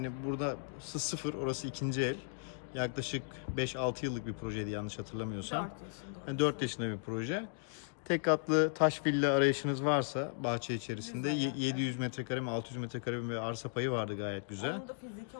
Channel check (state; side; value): silent; right; digital silence